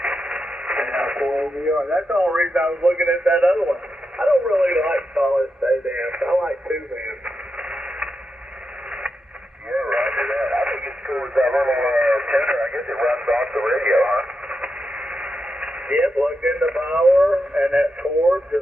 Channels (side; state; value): both; normal; correlation 0.87